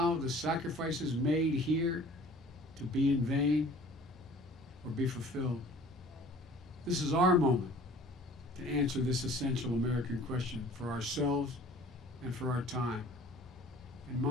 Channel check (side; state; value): both; normal; correlation 0.49